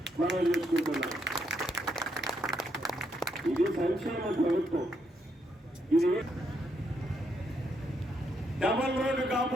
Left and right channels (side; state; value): both; normal; correlation 0.77